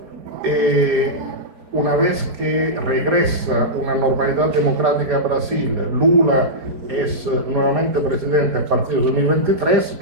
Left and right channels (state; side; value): late; left; 5.0 ms